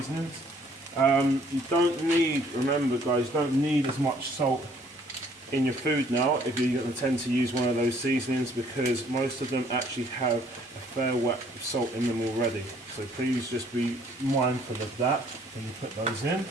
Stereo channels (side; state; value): both; normal; correlation 0.61